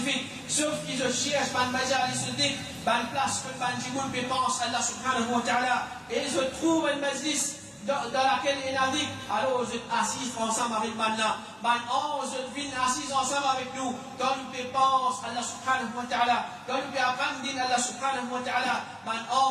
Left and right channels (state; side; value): identical; both; correlation 1.00